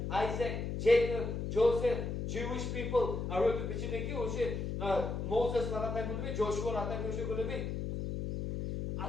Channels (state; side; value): noise; left; hum, 3 dB below the sound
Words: Isaac, Jacob, Joseph, Jewish people. 아로도 비치네 키 오시 Moses 라타이 문비, Joshua 라타이 오시 그러비.